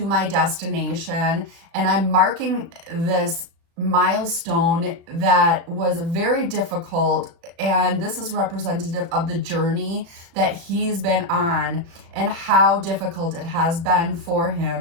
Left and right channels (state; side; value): late; left; 35 ms